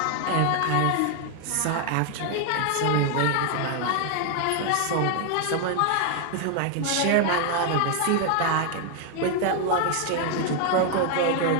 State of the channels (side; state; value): both; different; correlation 0.00